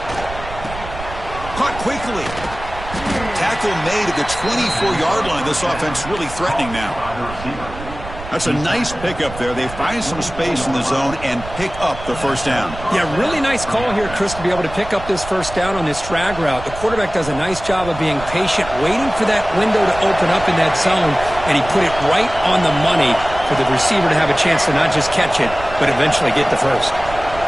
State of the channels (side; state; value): right; noise; rumble, 12 dB below the sound